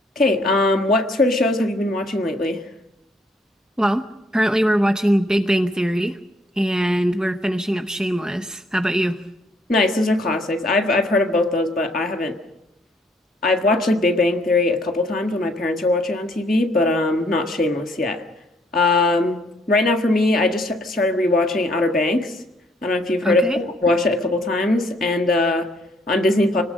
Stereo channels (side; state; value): both; normal; correlation 0.66